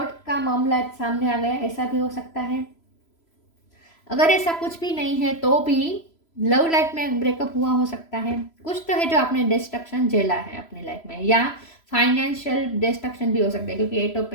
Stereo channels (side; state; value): right; late; 3.0 ms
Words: का मामला सामने आ गया, ऐसा भी हो सकता है। अगर ऐसा कुछ भी नहीं है तो भी लव लाइफ में ब्रेकअप हुआ हो सकता है। कुछ तो है जो आपने डिस्ट्रक्शन झेला है अपनी लाइफ में, या फाइनेंशियल डिस्ट्रक्शन भी हो सकता है क्योंकि एट ऑफ